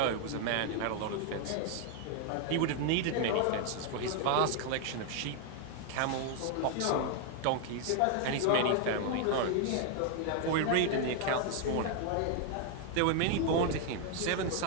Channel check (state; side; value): different; both; correlation 0.00